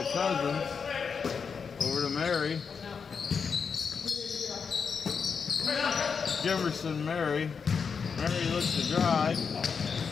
Cousins. Over to Mary. Jemerson, Mary. Mary looks to drive.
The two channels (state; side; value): quieter; right; 5.9 dB